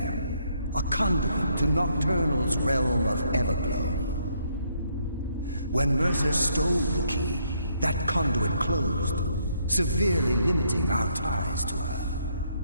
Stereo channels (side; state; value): both; inverted; correlation -0.72